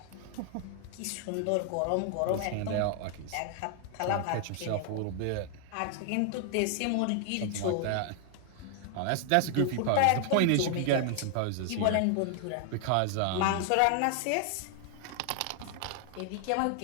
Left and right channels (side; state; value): both; different; correlation 0.00